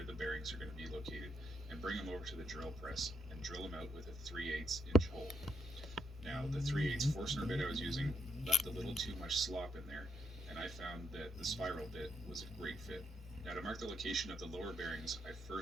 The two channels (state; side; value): normal; both; correlation 0.77